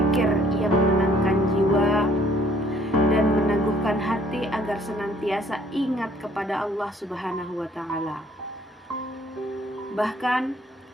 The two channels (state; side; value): normal; both; correlation 0.60